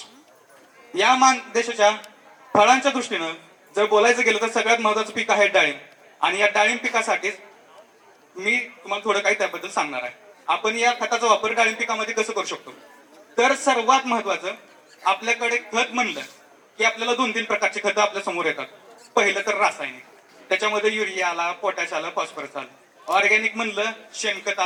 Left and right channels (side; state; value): both; identical; correlation 1.00